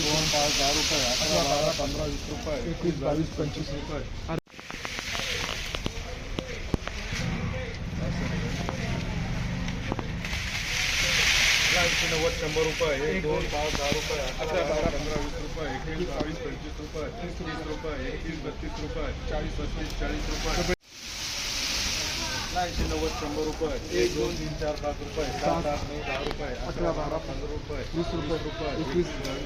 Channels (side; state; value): both; identical; correlation 1.00